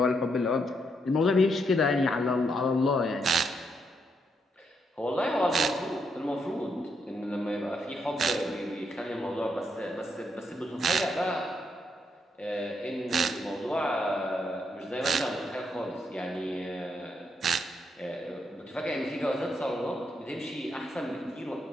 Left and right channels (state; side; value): normal; both; correlation 0.78